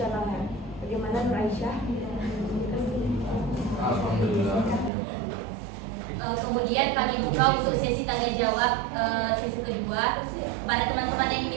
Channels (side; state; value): left; drops out; at 4.9 s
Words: Bagaimana Nur Aisyah? Kemudian kami buka untuk sesi tanya jawab sesi kedua. Kepada teman-teman yang